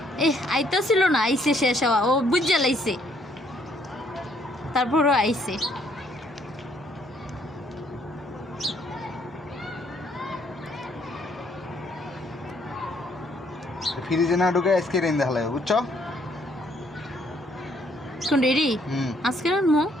আইতে ছিল না, আইসে শেষ হওয়া, ও বুঝে লাইছে তারপরও আইসে। ফ্রিজে না ঢুকে আজকে রেন্দে হালায়, বুঝছো? কোন রেডি আজকে রানমো?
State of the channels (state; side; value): normal; both; correlation 0.67